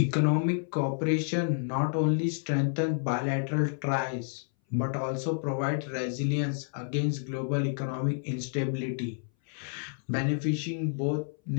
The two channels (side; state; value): right; silent; 58 dB below the other